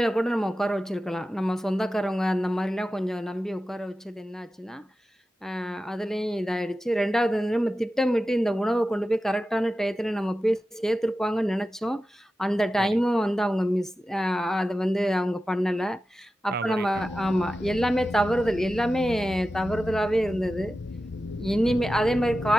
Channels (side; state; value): both; normal; correlation 0.93